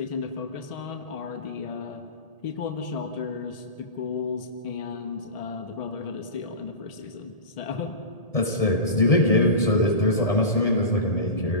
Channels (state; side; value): late; right; 1.8 ms